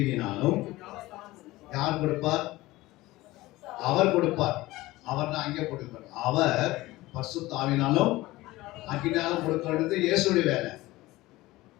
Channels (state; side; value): quieter; right; 18.7 dB